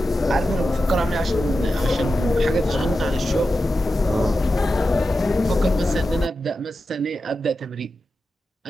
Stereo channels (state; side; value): normal; both; correlation 0.91